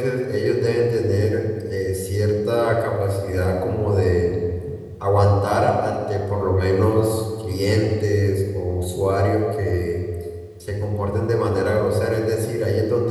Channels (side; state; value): both; identical; correlation 1.00